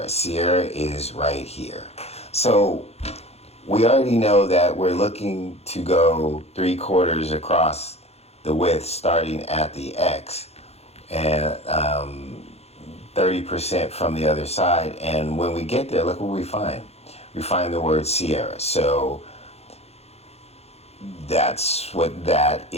Sierra is right here. So we already know that we're looking to go 3/4 across the width starting at the X and 30% from the other side. And when we get there, look what we find. We find the word Sierra. So that's what that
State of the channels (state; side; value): late; right; 0.30 ms